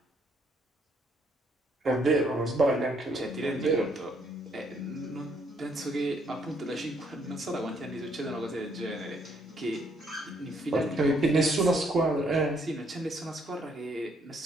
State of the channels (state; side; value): normal; both; correlation 0.69